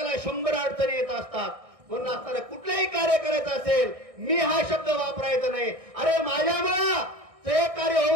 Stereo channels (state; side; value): late; left; 1.6 ms